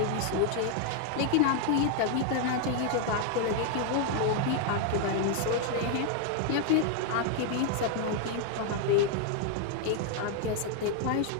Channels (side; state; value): both; different; correlation 0.00